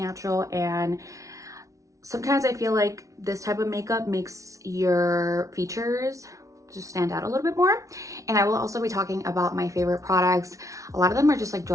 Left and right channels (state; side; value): late; left; 0.16 ms